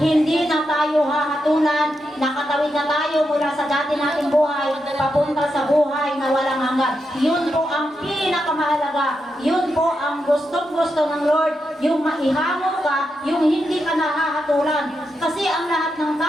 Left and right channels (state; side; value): normal; both; correlation 0.85